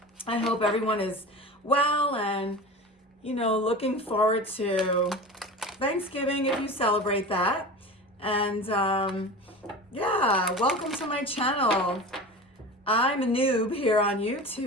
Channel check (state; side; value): normal; both; correlation 0.32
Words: I hope everyone is well and, looking forward to Thanksgiving if you celebrate that. And welcome to my channel. I'm a noob here on